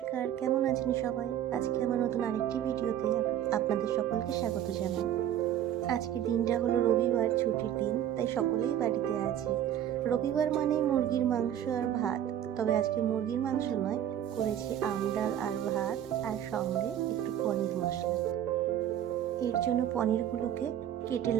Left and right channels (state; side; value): quieter; left; 10.7 dB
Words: কেমন আছেন সবাই? আজকে আমার নতুন আরেকটি ভিডিওতে আপনাদের সকলকে স্বাগত জানাই। আজকে দিনটা হলো রবিবার, ছুটির দিন, তাই সকলেই বাড়িতে আছে। রবিবার মানেই মুরগির মাংস আর ভাত। তবে আজকে মুরগির মাংস নয়, করেছি আম ডাল আর ভাত, আর সঙ্গে একটু পনির মশলা। এর জন্য পনিরগুলোকে কেটে